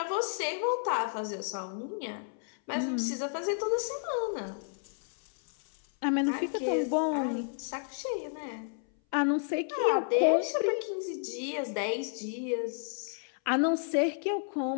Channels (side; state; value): right; silent; 57 dB below the other